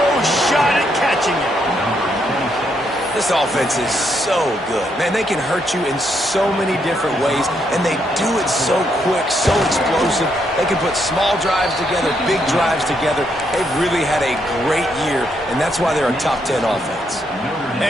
shot at catching him. This offense is so good. Man, they can hurt you in so many different ways, and they do it so quick, so explosive. They can put small drives together, big drives together. They've really had a great year, and that's why they're a top 10 offense.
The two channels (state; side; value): normal; both; correlation 0.76